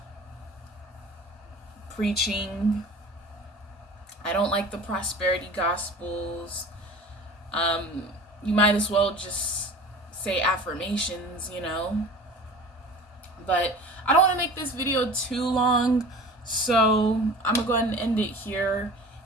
preaching. I don't like the prosperity gospels. You might as well just say affirmations, you know. But I don't want to make this video too long, so I'm gonna go ahead and end it here.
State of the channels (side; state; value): both; normal; correlation 0.40